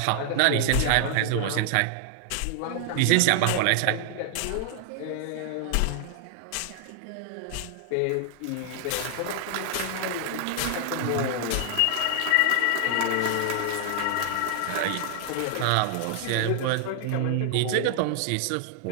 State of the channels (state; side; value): different; both; correlation -0.01